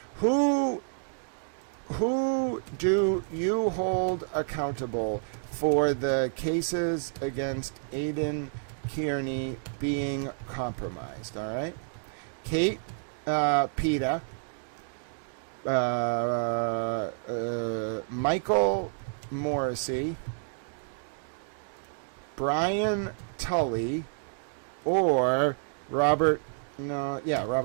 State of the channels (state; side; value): silent; left; digital silence